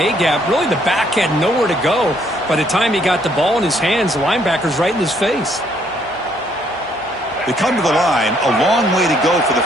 Really, the back had nowhere to go. By the time he got the ball in his hands, the linebacker's right in his face. They come to the line, a long way to go for the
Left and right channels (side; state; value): both; normal; correlation 0.68